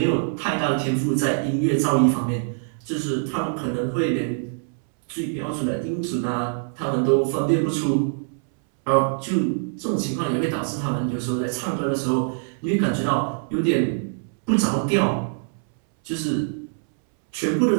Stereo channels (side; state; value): left; silent; 63 dB below the other